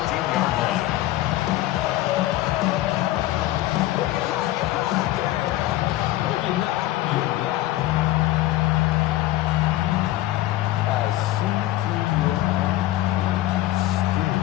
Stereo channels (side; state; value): right; quieter; 15.6 dB